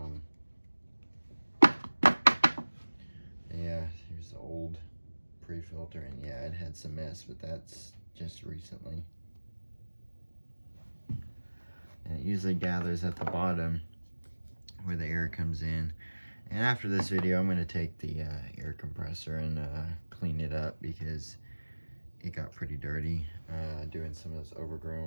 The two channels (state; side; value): inverted; both; correlation -1.00